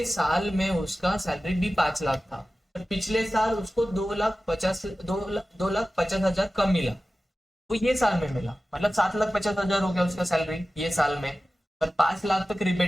साल में उसका सैलरी भी 5 लाख था, पर पिछले साल उसको 2,50,000 कम मिला, वो ये साल में मिला, मतलब 7,50,000 हो गया उसका सैलरी ये साल में। पर 5 लाख तक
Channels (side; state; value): both; normal; correlation 0.95